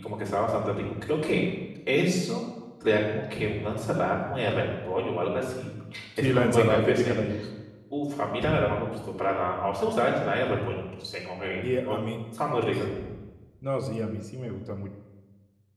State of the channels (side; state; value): both; identical; correlation 1.00